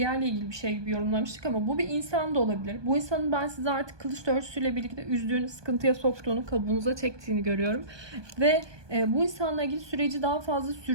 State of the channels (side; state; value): left; late; 1.2 ms